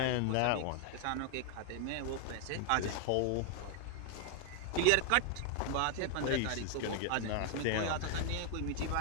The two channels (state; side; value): different; both; correlation 0.00